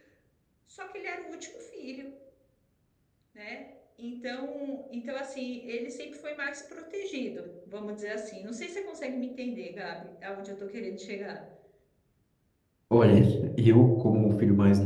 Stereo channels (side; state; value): both; identical; correlation 1.00